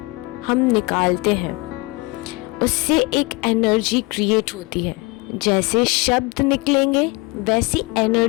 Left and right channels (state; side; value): quieter; right; 25.5 dB